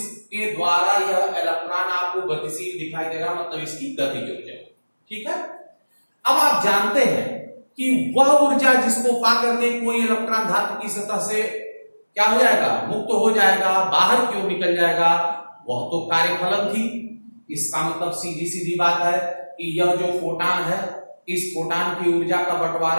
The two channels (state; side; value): inverted; both; correlation -1.00